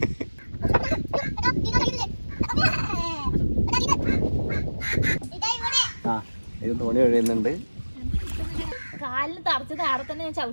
ഇത് തോണി ഒഴിയുന്നുണ്ട്. കാലിന് തറച്ചത് അവിടെ തന്നെ ഞാൻ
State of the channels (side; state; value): both; inverted; correlation -1.00